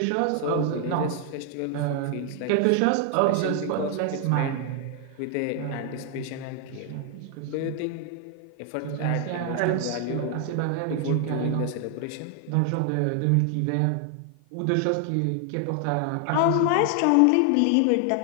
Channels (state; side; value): different; both; correlation 0.00